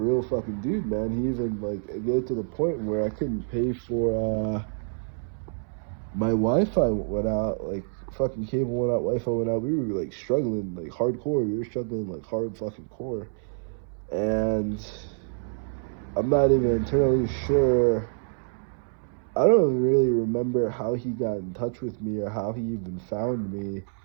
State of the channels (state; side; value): silent; left; 60 dB below the other